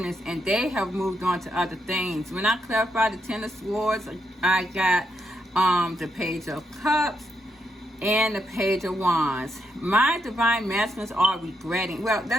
and they have moved on to other things. When I clarify the Ten of Swords, I got the Page of Cups and the Page of Wands. My divine masculines are regretting. Well,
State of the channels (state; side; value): normal; both; correlation 0.80